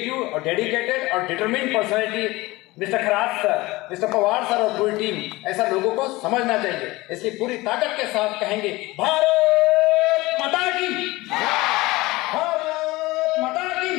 और डेडिकेटेड और determined personality mister Kharaj sir, mister Pawar sir और पूरी टीम। ऐसा लोगों को समझना चाहिए, इसलिए पूरी ताकत के साथ कहेंगे भारत माता की, भारत माता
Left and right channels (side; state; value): right; quieter; 20.7 dB